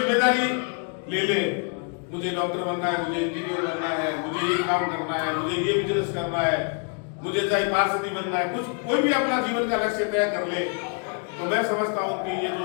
ले ले, मुझे डॉक्टर बनना है, मुझे इंजीनियर बनना है, मुझे ये काम करना है, मुझे ये बिजनेस करना है, मुझे चाहे पार्षदी बनना है, कुछ कोई भी अपना जीवन का लक्ष्य तय कर ले। तो मैं समझता हूँ कि ये जो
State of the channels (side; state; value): right; quieter; 39.5 dB